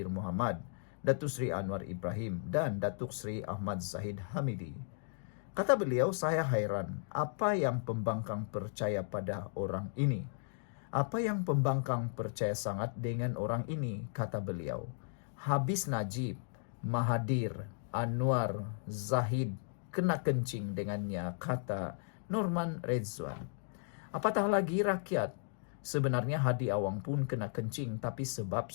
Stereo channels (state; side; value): silent; right; digital silence